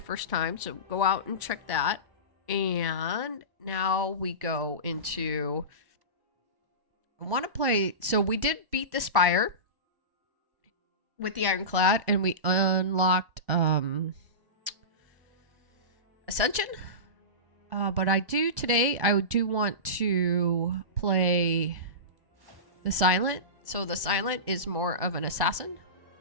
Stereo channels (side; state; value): left; late; 1.1 ms